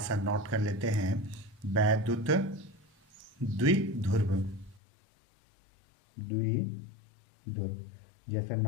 नोट कर लेते हैं। वैद्युत द्विध्रुव, द्विध्रुव जैसा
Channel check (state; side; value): drops out; right; at 4.8 s